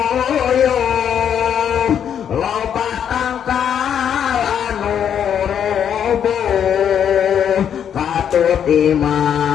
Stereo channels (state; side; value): quieter; right; 8.7 dB